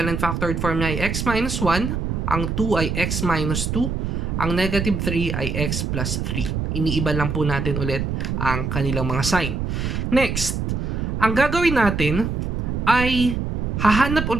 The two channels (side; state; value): right; noise; rumble, 2 dB below the sound